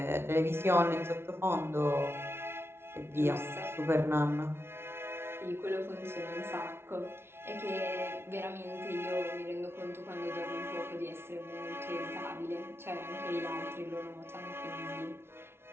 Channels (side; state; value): left; late; 0.12 ms